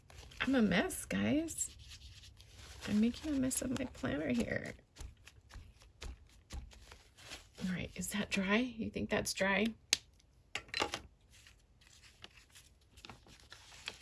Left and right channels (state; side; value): identical; both; correlation 1.00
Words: I'm a mess, guys. I'm making a mess of my planner here. All right, is that dry? You think that's dry?